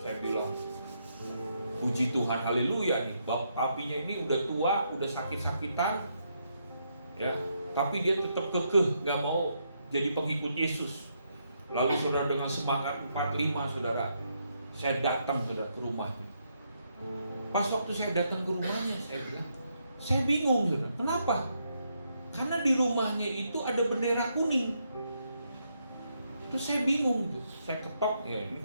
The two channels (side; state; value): both; inverted; correlation -0.78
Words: bilang, puji Tuhan, haleluya nih. Papinya ini udah tua, udah sakit-sakitan, ya, tapi dia tetap kekeh, gak mau jadi pengikut Yesus. Lalu saudara, dengan semangat 45, saudara, saya datang, saudara, ke rumahnya. Pas waktu saya datang ke rumahnya, saya bilang, Saya bingung, saudara. Kenapa? Karena di rumahnya itu ada bendera kuning. Terus saya bingung, saya ketok, ya ini